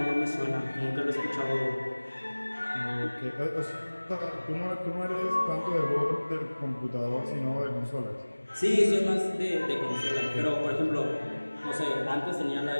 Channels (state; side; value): inverted; both; correlation -1.00